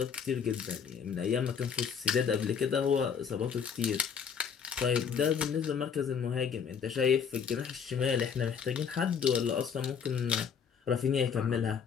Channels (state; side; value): quieter; right; 6.9 dB